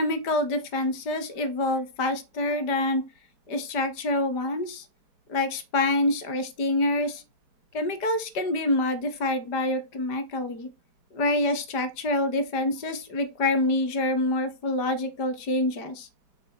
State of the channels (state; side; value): late; right; 5.0 ms